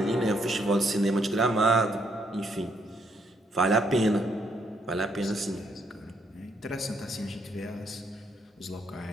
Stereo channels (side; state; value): both; normal; correlation 0.72